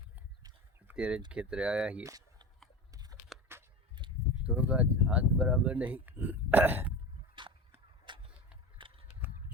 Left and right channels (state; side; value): normal; both; correlation 0.27